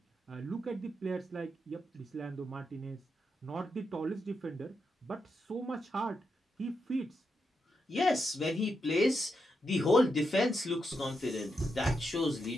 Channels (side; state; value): both; normal; correlation 0.84